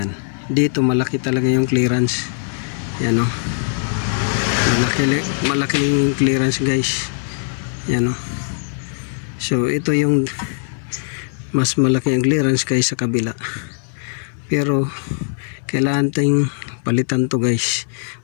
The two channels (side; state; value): right; silent; digital silence